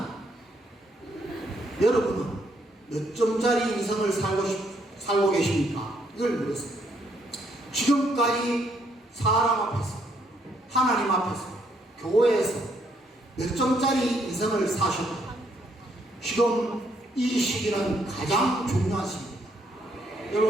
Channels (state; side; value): normal; both; correlation 0.71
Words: 여러분은 몇 점짜리 인생을 살고 계십니까? 이걸 물었습니다. 지금까지 사람 앞에서, 하나님 앞에서, 교회에서 몇 점짜리 인생을 사셨다. 지금 이 시기는 가장 중요한 시기입니다.